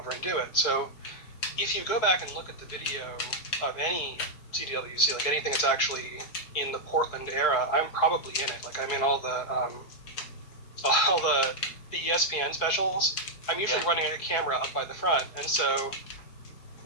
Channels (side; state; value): right; late; 4.6 ms